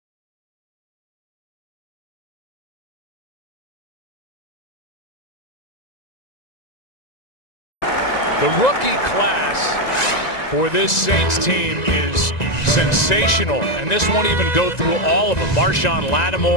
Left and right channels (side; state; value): right; late; 1.9 ms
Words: the rookie class for this Saints team is sensational, and this won't even go through all of them. Marshawn